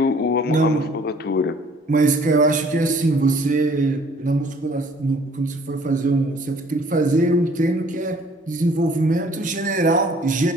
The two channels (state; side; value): normal; both; correlation 0.56